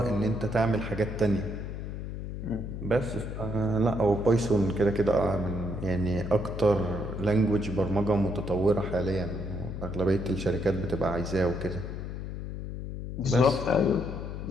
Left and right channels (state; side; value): noise; left; hum, 6 dB below the sound